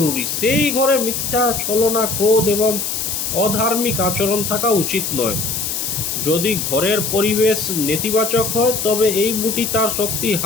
সেই ঘরে মিথ্যা, ছলনা, ক্রোধ এবং অধার্মিক আচরণ থাকা উচিত নয়। যদি ঘরের পরিবেশ নেতিবাচক হয়, তবে এই বুটি তার শক্তি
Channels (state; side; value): noise; left; hiss, 2 dB below the sound